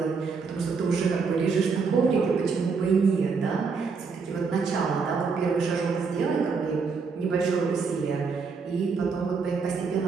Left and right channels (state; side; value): quieter; left; 5.1 dB